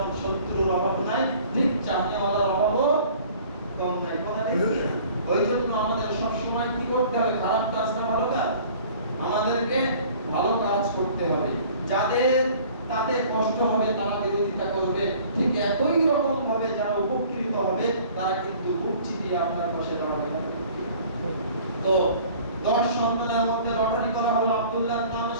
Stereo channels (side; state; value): both; inverted; correlation -0.50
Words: শত্রুর অভাব নাই, ঠিক চাহিদাওয়ালার অভাবও কম নাই। ওই জন্য আমাদের সব সময় কি করতে হবে? খারাপ কাজ না ভালো কাজ, আমাদেরকে ভালো কাজ করতে হবে। যাদের তাতে কষ্ট হবে তারা বিরোধিতা করবে, ঠিক একই রকম ভাবে যারা উপকৃত হবে তারা কিন্তু বুক চিতিয়ে আপনার পাশে দাঁড়াবে। তো 10 সন্তানের মধ্যে লটারি করা হলো, আব্দুল্লাহর নাম